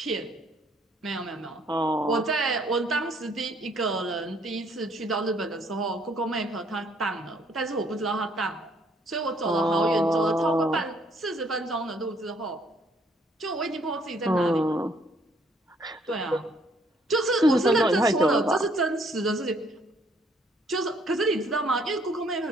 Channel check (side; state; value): both; normal; correlation 0.65